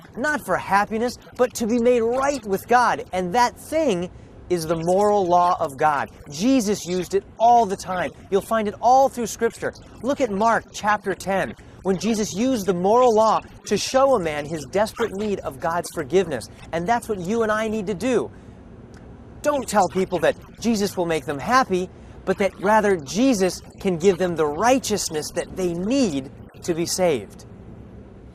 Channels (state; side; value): identical; both; correlation 1.00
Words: Not for happiness, but to be made right with God. And that thing is the moral law of God. Jesus used it all the time. You'll find it all through Scripture. Look at Mark chapter 10, when Jesus used the moral law to show a man his desperate need of God's forgiveness. And that's what you and I need to do. Don't tell people that Jesus will make them happy, but that rather Jesus can give them the righteousness that they need to be saved.